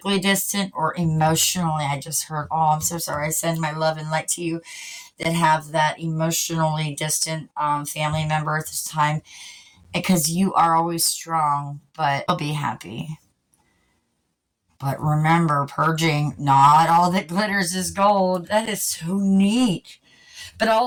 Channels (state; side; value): identical; both; correlation 1.00